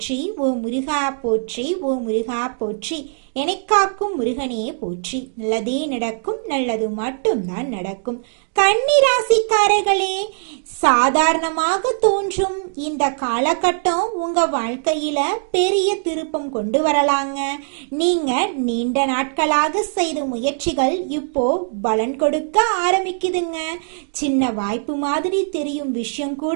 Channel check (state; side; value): silent; left; digital silence